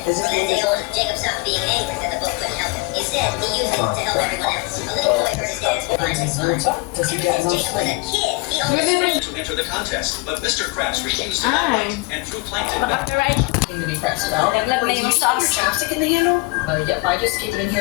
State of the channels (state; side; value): quieter; right; 25.8 dB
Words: From that day on, Jacob stopped being angry that the book couldn't help him. Instead, he used it to help everyone else. A little boy heard his dad's finally smile. Does he get Since Jacob was a kid, he only To enter the contest, but Mr. Krabs refused to Ah. and threw Plankton Baka right. To be pressed out. Naglag na yung sauce. Chapstick in the handle? Yep, I just keep it in